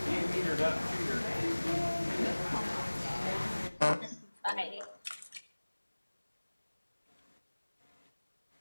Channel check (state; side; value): inverted; both; correlation -1.00